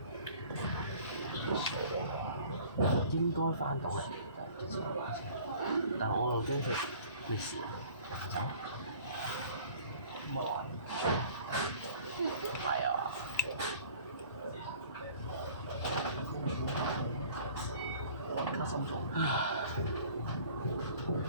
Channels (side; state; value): both; inverted; correlation -0.49